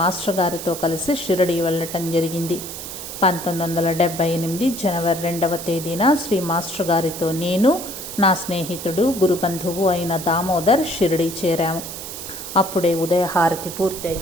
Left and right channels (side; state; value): right; noise; hiss, 9 dB below the sound